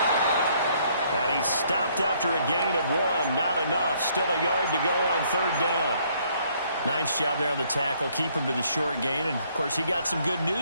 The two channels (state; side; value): inverted; both; correlation -0.66